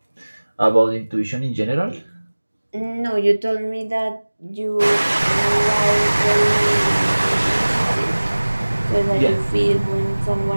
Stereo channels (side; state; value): both; inverted; correlation -1.00